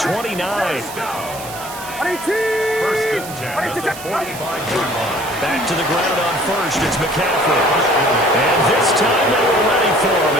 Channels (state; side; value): noise; right; hiss, 13 dB below the sound